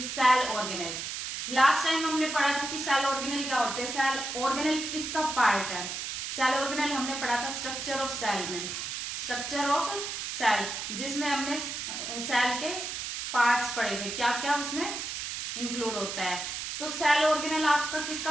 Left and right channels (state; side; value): noise; right; hiss, 5 dB below the sound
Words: cell organelle. Last time हमने पढ़ा था कि cell organelle क्या होते हैं, सेल ऑर्गेनेल किसका पार्ट है। सेल ऑर्गेनेल हमने पढ़ा था स्ट्रक्चर ऑफ सेल में, स्ट्रक्चर ऑफ सेल जिसमें हमने सेल के पार्ट्स पढ़े थे, क्या क्या उसमें इंक्लूड होता है। तो सेल ऑर्गेनेल आपका